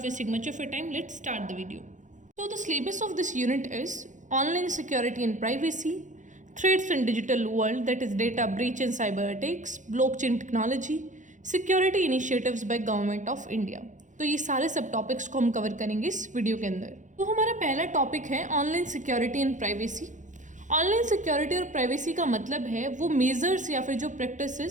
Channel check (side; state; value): left; late; 0.36 ms